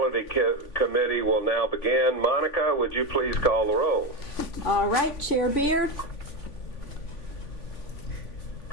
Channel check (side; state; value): right; late; 3.5 ms